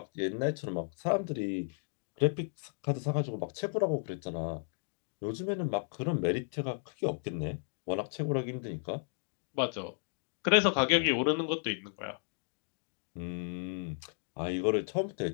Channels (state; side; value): silent; right; 55 dB below the other